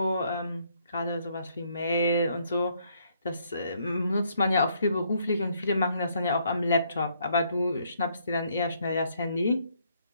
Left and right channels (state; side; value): inverted; both; correlation -0.70